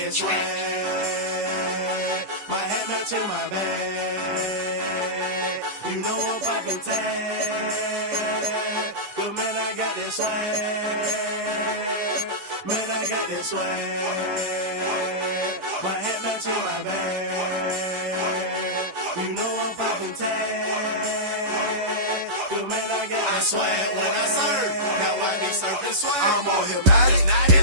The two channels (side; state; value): left; late; 10 ms